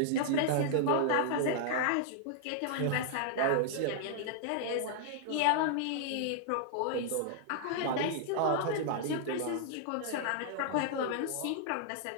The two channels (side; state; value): both; different; correlation -0.01